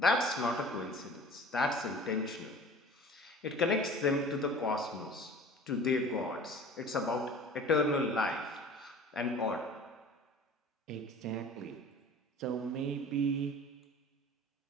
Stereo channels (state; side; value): normal; both; correlation 0.44